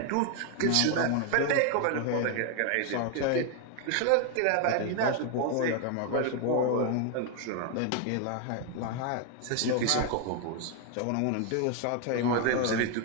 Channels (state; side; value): different; both; correlation 0.00